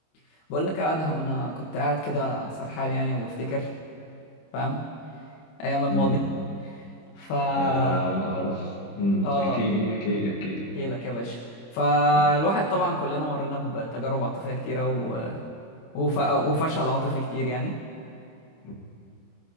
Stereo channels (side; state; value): right; late; 26 ms